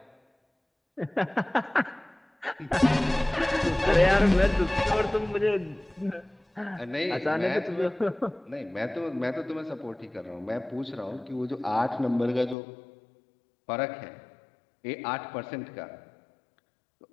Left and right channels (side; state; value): right; drops out; at 12.6 s